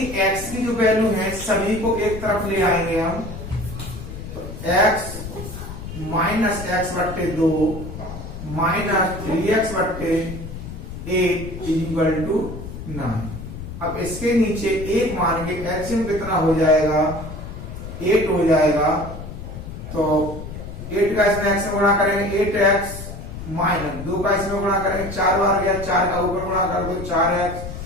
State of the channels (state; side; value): noise; left; rumble, 10 dB below the sound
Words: x की जो वैल्यू है सभी को एक तरफ ले आएंगे हम, तो x minus x/2 minus 3x/8 equal to 9। अब इसके नीचे एक मान के एलसीएम कितना हो जाएगा, 8 हो जाएगा। तो 8 का इसमें x में गुणा करेंगे 8x माइनस 2 का इसमें गुणा करेंगे 4 बार गया, 4 का ऊपर गुणा कर दो 4x